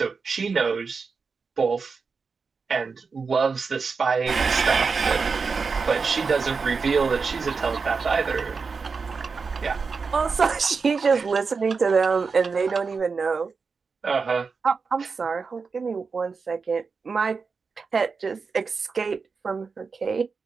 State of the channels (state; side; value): quieter; left; 5.0 dB